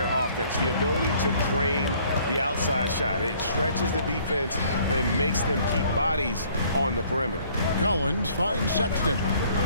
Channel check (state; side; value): inverted; both; correlation -0.59